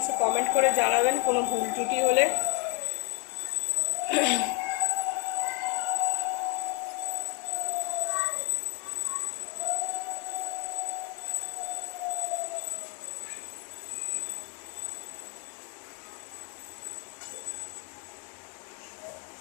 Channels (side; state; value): right; quieter; 32.9 dB